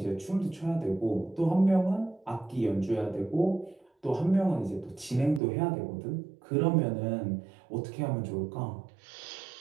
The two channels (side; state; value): left; drops out; at 5.4 s